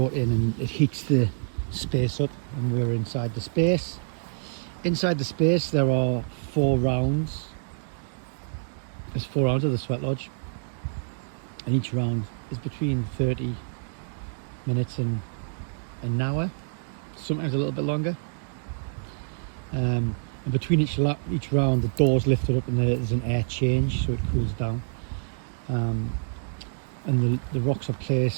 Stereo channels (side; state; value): left; silent; digital silence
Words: in, and it heats the space up, and we're inside the space. Inside the space there are 4 rounds. There's 4 rounds of the Sweat Lodge, and each round is between 30 minutes and an hour, sometimes a little bit longer. And between each round the door's lifted up and there's an air change, so it cools down. And the rocks are